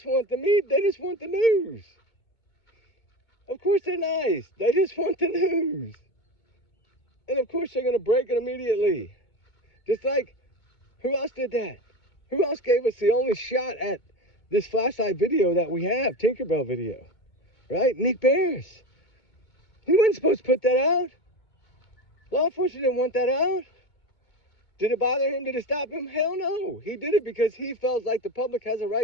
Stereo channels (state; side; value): late; right; 2.2 ms